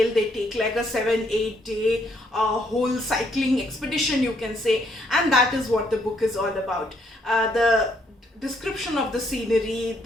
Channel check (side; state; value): both; normal; correlation 0.71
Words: They take like a 7-8 day whole cycling expedition, you can say, and that is what the book is all about. The description of the scenery,